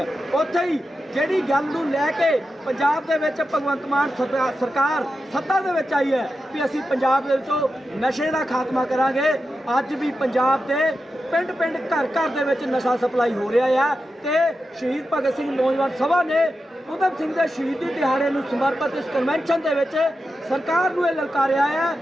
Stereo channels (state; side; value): normal; both; correlation 0.90